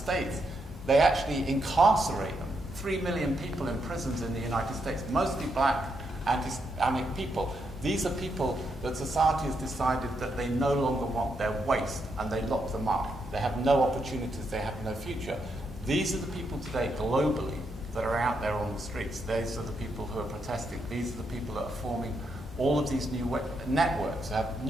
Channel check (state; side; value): normal; both; correlation 0.80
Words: they actually incarcerate them. 3 million people in prisons in the United States, mostly black, anti-Islamic people. These are people that society has decided that they no longer want. They're waste, and they lock them up. They have no opportunities, they have no future. These are the people today globally that are out there on the streets. These are the people who are protesting. These are the people that are forming all of these new networks, have